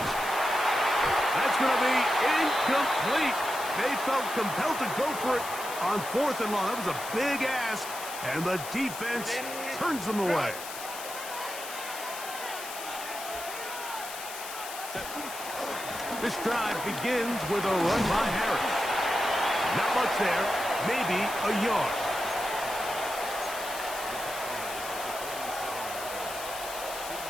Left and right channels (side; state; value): left; noise; hiss, 10 dB below the sound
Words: That's going to be incomplete. They felt compelled to go for it on fourth and long. That was a big ask. And the defense turns them away. This drive begins with a run by Harris. Not much there, maybe a yard.